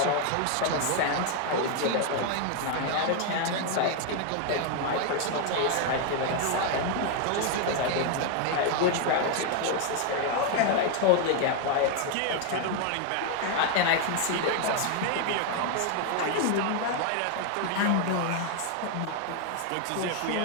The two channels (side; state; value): both; different; correlation 0.00